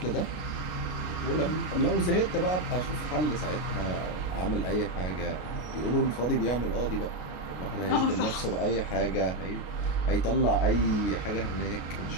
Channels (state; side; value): late; right; 33 ms